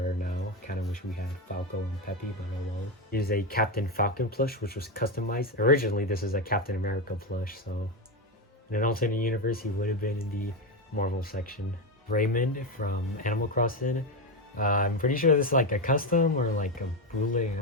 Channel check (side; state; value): both; normal; correlation 0.11